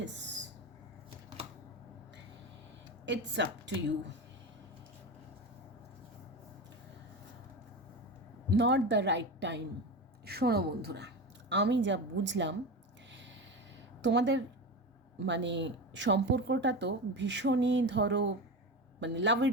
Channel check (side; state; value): both; normal; correlation 0.23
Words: It's up to you. Not the right time. শোনো বন্ধুরা, আমি যা বুঝলাম তোমাদের মানে সম্পর্কটা তো ভীষণই ধরো মানে